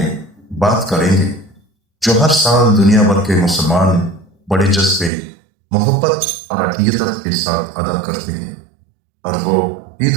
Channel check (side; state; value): left; drops out; at 5.1 s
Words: بات کریں گے جو ہر سال دنیا بھر کے مسلمان بڑے جذبے، محبت اور عقیدت کے ساتھ ادا کرتے ہیں، اور وہ